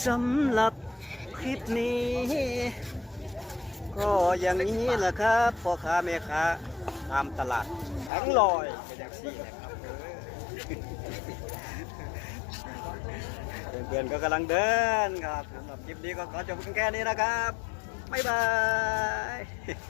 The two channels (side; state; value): right; drops out; at 8.1 s